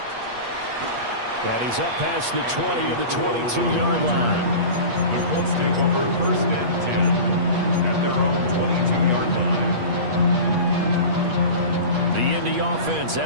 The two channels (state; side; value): late; left; 8.4 ms